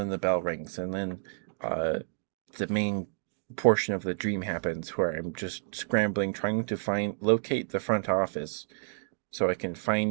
the bell rings. And then uh, the main portion of the dream happens where I'm just scrambling, trying to locate the front office so I can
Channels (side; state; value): left; silent; digital silence